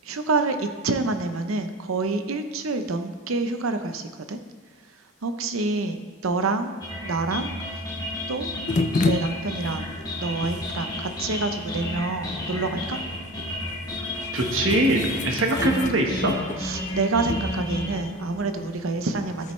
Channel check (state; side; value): normal; both; correlation 0.34